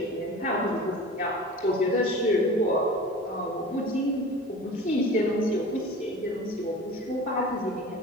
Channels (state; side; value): normal; both; correlation 0.37